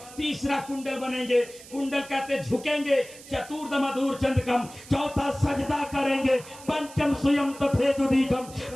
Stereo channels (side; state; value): right; noise; hiss, 18 dB below the sound